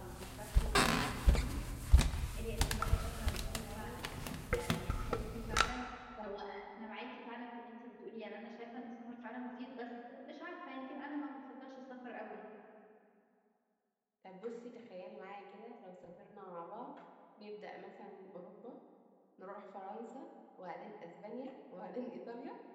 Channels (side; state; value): both; identical; correlation 1.00